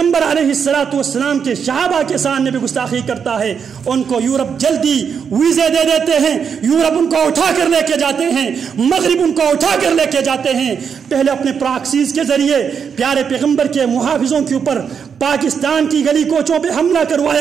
علیہ السلام کے صحابہ کے سامنے بھی گستاخی کرتا ہے، ان کو یورپ جلدی ویزے دے دیتے ہیں، یورپ ان کو اٹھا کر لے کے جاتے ہیں، مغرب ان کو اٹھا کر لے کے جاتے ہیں۔ پہلے اپنے پراکسیز کے ذریعے پیارے پیغمبر کے محافظوں کے اوپر پاکستان کی گلی کوچوں پہ حملہ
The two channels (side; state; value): left; quieter; 6.9 dB